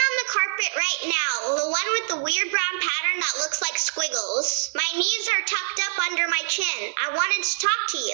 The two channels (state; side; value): silent; left; digital silence